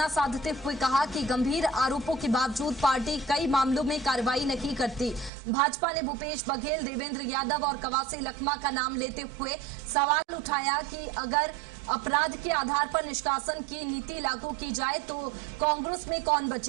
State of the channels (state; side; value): drops out; left; at 5.3 s